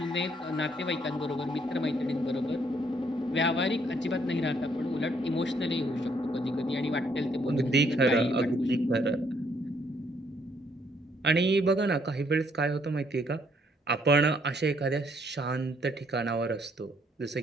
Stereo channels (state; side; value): normal; both; correlation 0.69